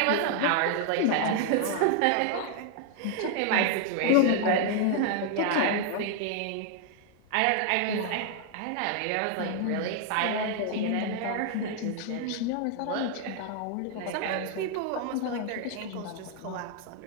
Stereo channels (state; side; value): different; both; correlation 0.00